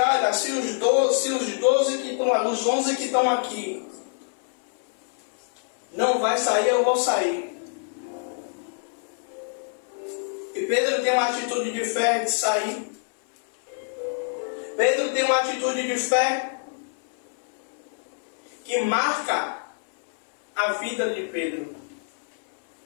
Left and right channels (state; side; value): silent; right; 58 dB below the other